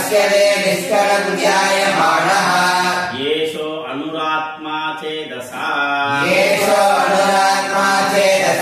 निष्कलं ध्यायमाणः येषो अनुरात्मा चेदसा येषो अनुरात्मा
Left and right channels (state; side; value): identical; both; correlation 1.00